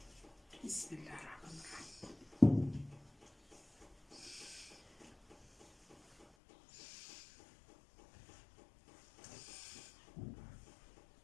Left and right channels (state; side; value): drops out; right; at 6.2 s